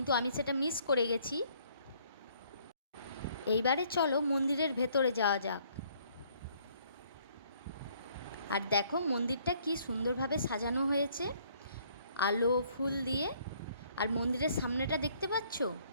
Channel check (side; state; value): both; inverted; correlation -0.63